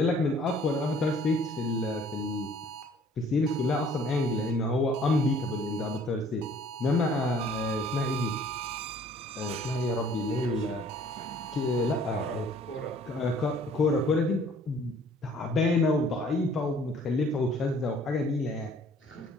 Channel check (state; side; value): normal; both; correlation 0.56